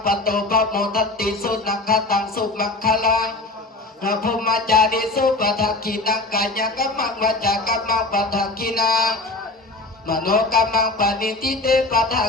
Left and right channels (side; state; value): right; quieter; 3.2 dB